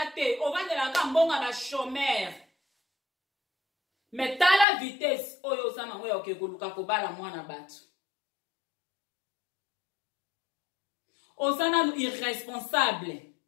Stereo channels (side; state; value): right; drops out; at 4.7 s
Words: te ovandelaka mbongo ba chômeur mais tala vitesse oyo oza nango ya koluka kobala mwana bato oza nanu irresponsable